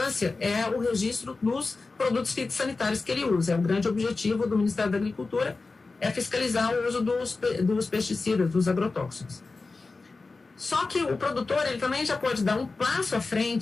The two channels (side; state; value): right; quieter; 3.8 dB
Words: é o registro dos produtos fitossanitários que ele usa. É o grande objetivo do Ministério da Agricultura, é fiscalizar o uso dos pesticidas, dos agrotóxicos. Só que o produtor, ele também já pode dar um passo à